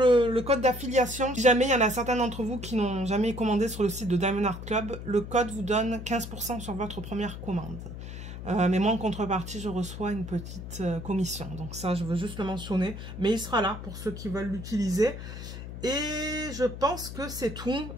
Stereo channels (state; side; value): noise; left; hum, 10 dB below the sound